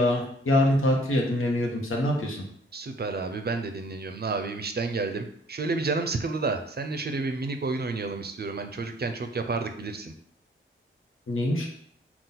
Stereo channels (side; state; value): both; normal; correlation 0.57